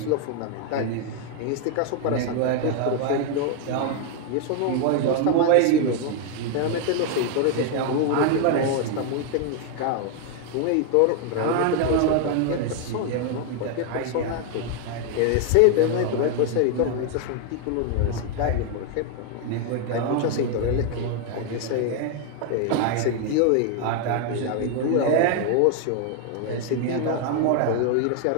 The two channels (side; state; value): both; different; correlation 0.01